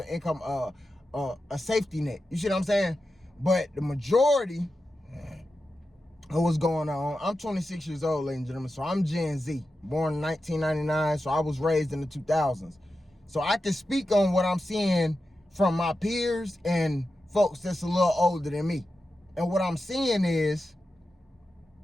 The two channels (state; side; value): normal; both; correlation 0.91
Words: income, a safety net. You see what I'm saying? But the majority of what's going on, I'm 26 years old, ladies and gentlemen, so I'm Gen Z, born in 1999, so I was raised in the 2000s. So I can speak on what I'm seeing from my peers and folks that's a little older than me. And what I'm seeing is